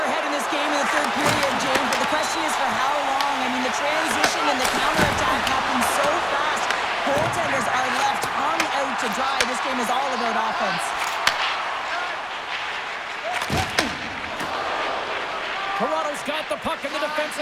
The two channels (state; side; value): identical; both; correlation 1.00